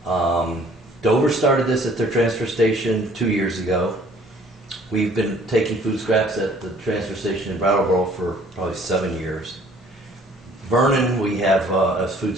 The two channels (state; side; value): normal; both; correlation 0.56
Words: Dover started this at their transfer station 2 years ago. We've been taking food scraps at the transfer station in Brattleboro for probably 7 years. Vernon, we have a food